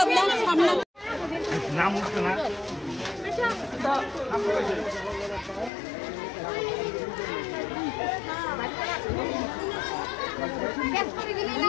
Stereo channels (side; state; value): right; drops out; at 5.7 s